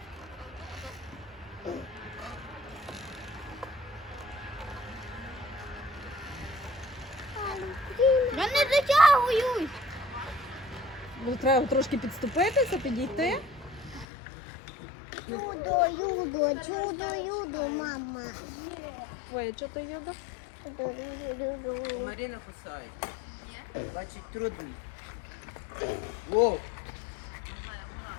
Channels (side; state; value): right; drops out; at 14.1 s